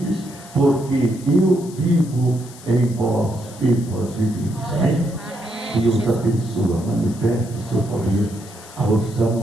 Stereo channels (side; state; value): left; noise; hiss, 19 dB below the sound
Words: porque eu vivo em vós e vós viveis. Amém? Deus abençoa, manifesta o seu poder, a unção,